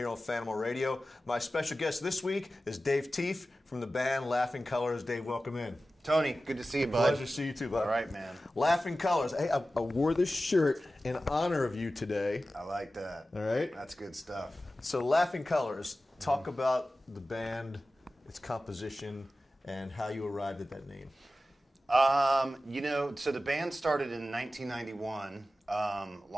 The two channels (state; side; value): normal; both; correlation 0.95